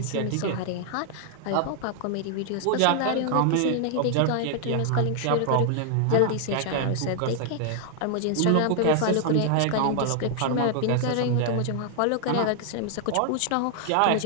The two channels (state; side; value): different; both; correlation 0.00